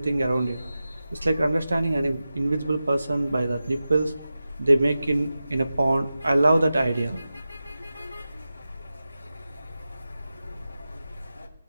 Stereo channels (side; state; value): both; inverted; correlation -0.94